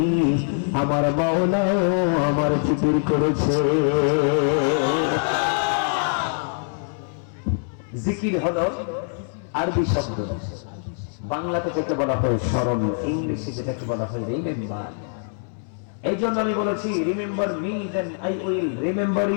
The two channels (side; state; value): right; silent; 63 dB below the other